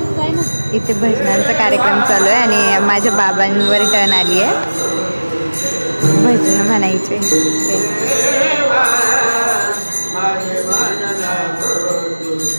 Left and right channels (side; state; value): both; inverted; correlation -1.00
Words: इथे भजनांचा कार्यक्रम चालू आहे आणि माझ्या बाबांवर टर्न आली आहे भजन म्हणायचे।